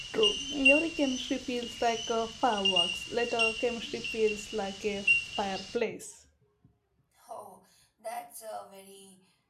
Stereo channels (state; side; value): identical; both; correlation 1.00